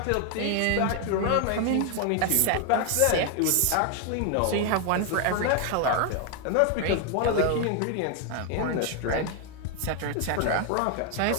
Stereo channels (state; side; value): different; both; correlation 0.01